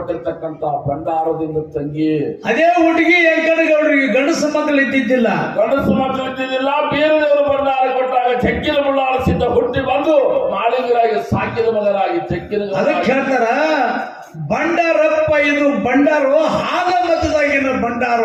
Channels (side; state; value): both; identical; correlation 1.00